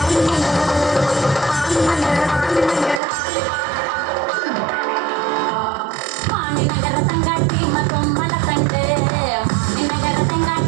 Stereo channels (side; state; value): left; drops out; at 3.0 s